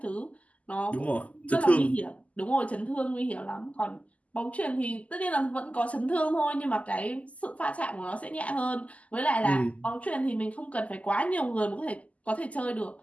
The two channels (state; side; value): late; right; 0.070 ms